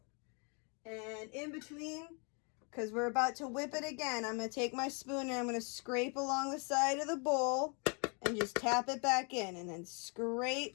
And in between, because we're about to whip it again, I'm going to take my spoon and I'm going to scrape along the side of the bowl and just tap it back in, and then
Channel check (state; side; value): quieter; right; 35.5 dB